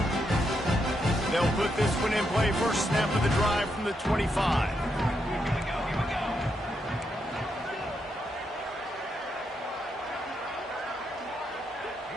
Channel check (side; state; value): both; normal; correlation 0.81